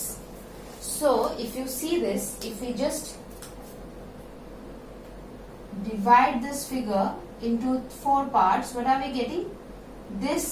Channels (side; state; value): both; identical; correlation 1.00